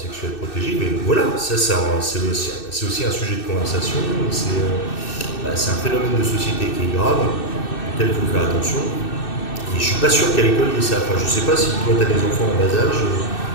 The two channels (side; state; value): right; late; 2.6 ms